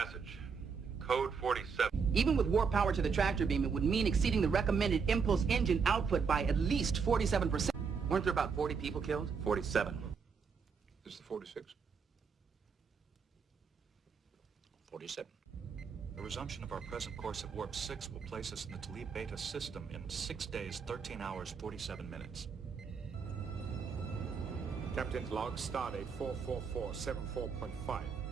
Code 47. Even with warp power to the tractor beam, it would mean exceeding the recommended impulse engine output by at least 47%. Weren't there about 40 people killed? 47. This is the 46. 47. The resumption of our present course at Warp 6 will place us in the Talib Beta system in 6 days, 13 hours, 47 minutes. Captain's log, stardate 44474.5.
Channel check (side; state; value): left; quieter; 5.7 dB